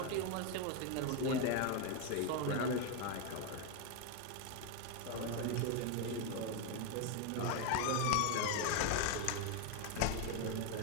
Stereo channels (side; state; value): both; different; correlation 0.02